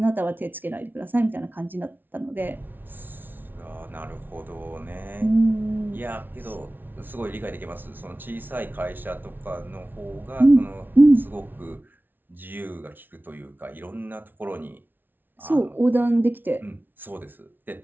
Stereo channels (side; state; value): left; late; 0.093 ms